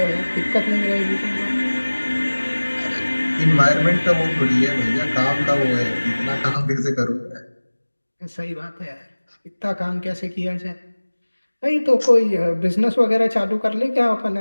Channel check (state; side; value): inverted; both; correlation -1.00